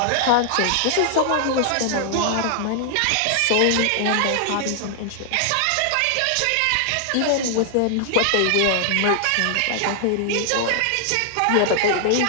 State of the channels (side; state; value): both; different; correlation 0.00